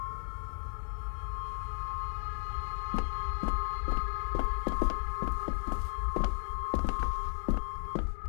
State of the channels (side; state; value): right; silent; 55 dB below the other